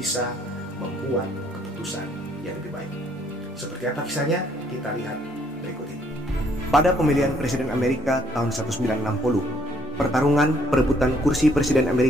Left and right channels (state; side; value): normal; both; correlation 0.65